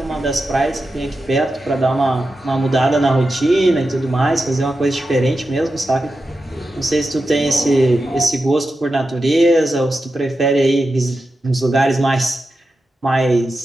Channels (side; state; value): both; normal; correlation 0.90